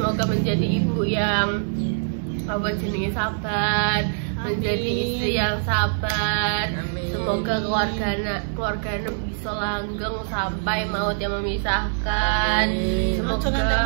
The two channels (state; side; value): silent; left; 63 dB below the other